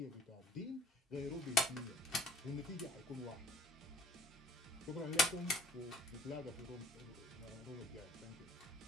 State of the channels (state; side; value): normal; both; correlation 0.51